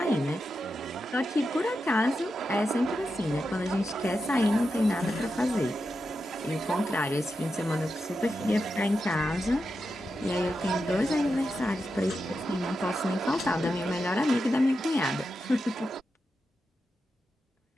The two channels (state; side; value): normal; both; correlation 0.88